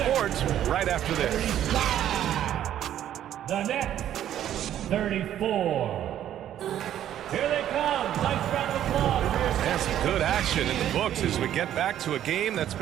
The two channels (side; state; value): left; quieter; 11.2 dB